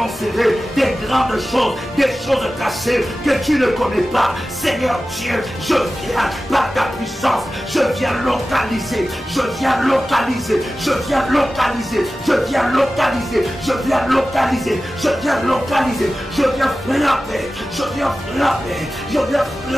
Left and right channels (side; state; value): both; normal; correlation 0.95